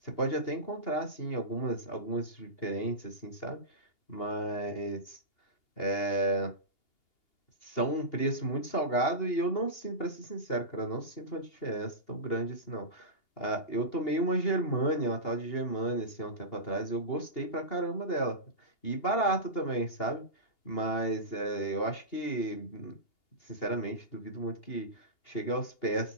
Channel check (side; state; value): right; late; 2.8 ms